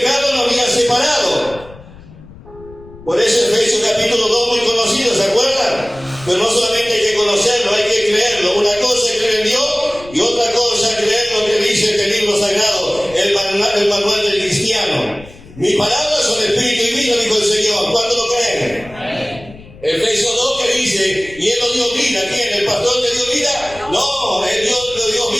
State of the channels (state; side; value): noise; left; rumble, 20 dB below the sound